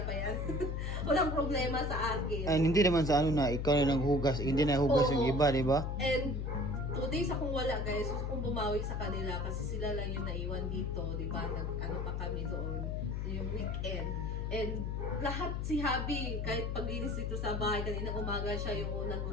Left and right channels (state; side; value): noise; left; hum, 1 dB below the sound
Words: pa yan. Walang problema sa akin. Ay, hindi naman sa ano na, ikaw na naghugas, hindi na hugas yung iba, di ba? And, 2 days akong wala guys, gusto kong bumawi sa kanila kasi sila lang yung naiwan dito, di ba? Ano pa kami doon, yung weekend. And lahat si Habi, kahit paglinis dito sa bahay, kanina umaga siya yung unang